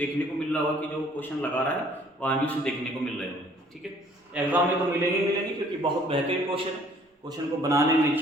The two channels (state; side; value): normal; both; correlation 0.58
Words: को मिल रहा होगा कि जो क्वेश्चन लगा रहा है वहाँ भी उसे देखने को मिल रहे होंगे। ठीक है, एग्जाम में तो मिलेंगे क्योंकि बहुत बेहतरीन क्वेश्चन है। क्वेश्चन को बनाने